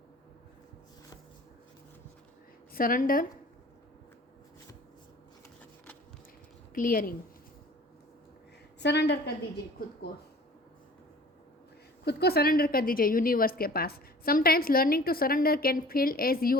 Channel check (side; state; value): both; normal; correlation 0.47